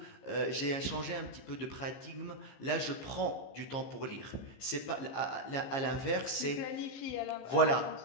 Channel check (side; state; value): right; late; 15 ms